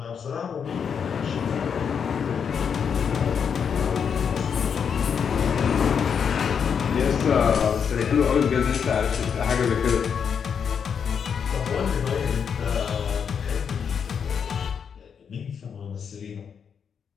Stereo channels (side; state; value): right; quieter; 7.0 dB